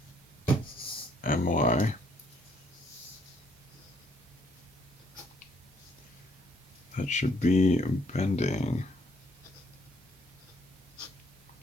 my. That should be bending.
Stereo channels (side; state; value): both; normal; correlation 0.68